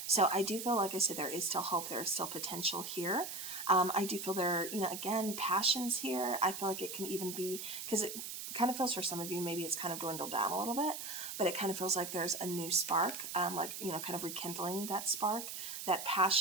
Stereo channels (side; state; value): right; noise; hiss, 7 dB below the sound